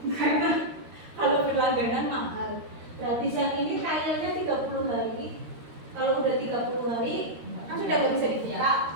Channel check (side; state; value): left; late; 13 ms